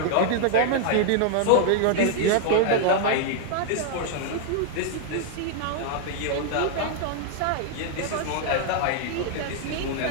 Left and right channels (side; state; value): both; different; correlation 0.00